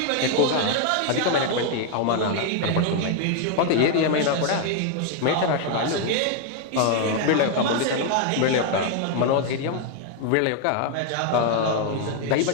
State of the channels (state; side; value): different; both; correlation 0.00